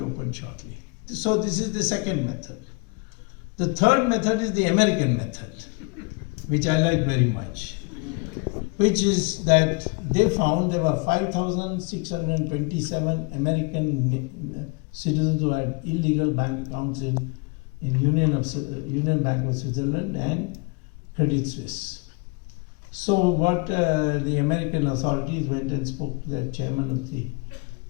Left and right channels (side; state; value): right; quieter; 29.7 dB